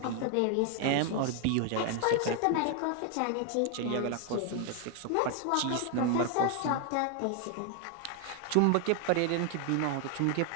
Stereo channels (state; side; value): different; both; correlation 0.00